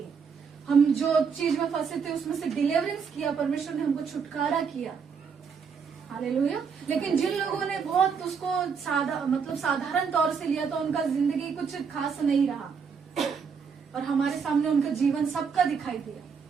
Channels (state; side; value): quieter; left; 6.1 dB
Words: हम जो चीज में फंसे थे उसमें से डिलीवरेंस किया, परमेश्वर ने हमको छुटकारा किया। हालेलुया। लेकिन जिन लोगों ने बहुत उसको साधारण तौर से लिया, तो उनका जिंदगी कुछ खास नहीं रहा, और हमारे सामने उनका जीवन सबका दिखाई दिया।